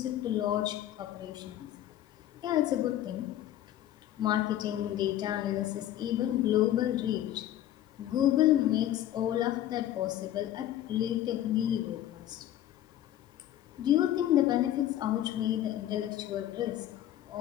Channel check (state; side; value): quieter; right; 12.5 dB